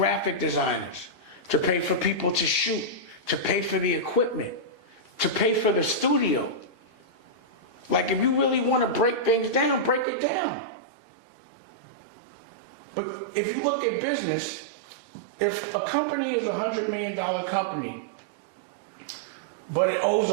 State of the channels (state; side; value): drops out; left; at 10.1 s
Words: designers, to pay for people to shoot, to pay for the equipment, to pay for the studio. Like, if you really want to break things down, break it down. But if you look at business, if a company is a $100 million company, but it owes